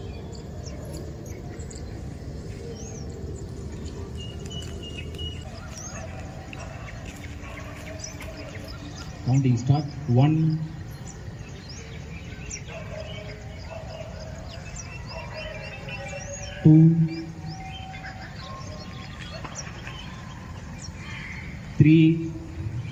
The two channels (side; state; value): both; identical; correlation 1.00